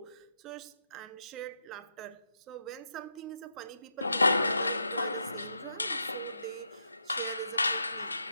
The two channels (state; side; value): inverted; both; correlation -0.83